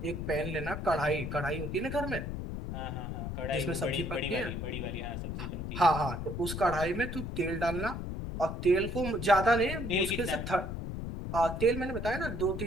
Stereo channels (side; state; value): left; noise; rumble, 5 dB below the sound